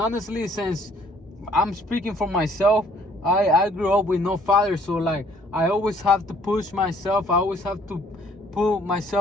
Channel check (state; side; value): normal; both; correlation 0.61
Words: since I'm speaking for myself, I grew up with no father, so like I always have to push myself. I always have to put